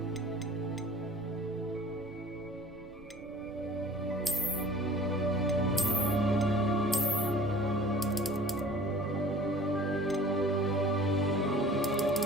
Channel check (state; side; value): noise; right; rumble, 22 dB below the sound